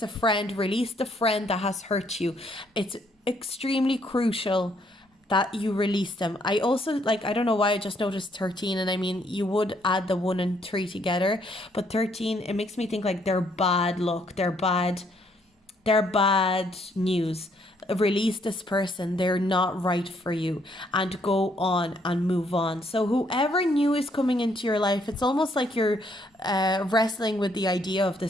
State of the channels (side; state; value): both; normal; correlation 0.69